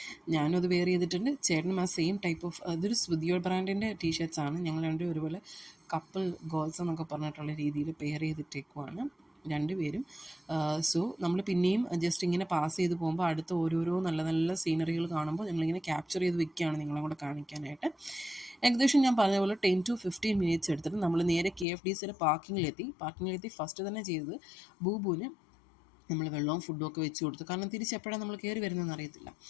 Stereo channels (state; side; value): drops out; right; at 21.7 s